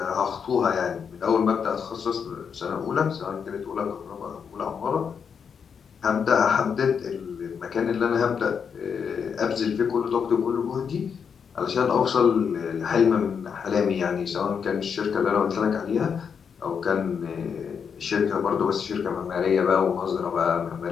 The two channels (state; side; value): quieter; right; 6.7 dB